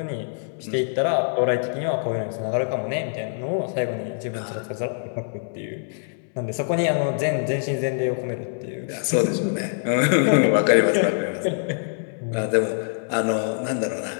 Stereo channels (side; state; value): right; silent; 62 dB below the other